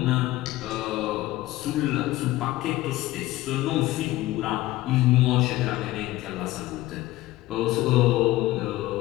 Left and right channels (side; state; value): right; quieter; 17.1 dB